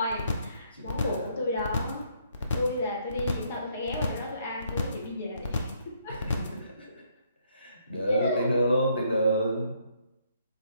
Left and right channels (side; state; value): both; inverted; correlation -0.70